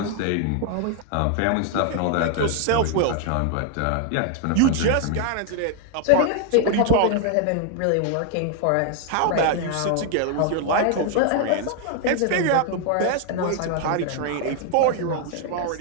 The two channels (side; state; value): both; different; correlation 0.00